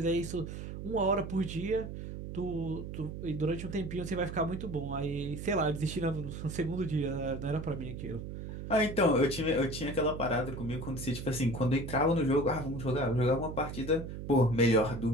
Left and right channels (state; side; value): noise; right; hum, 8 dB below the sound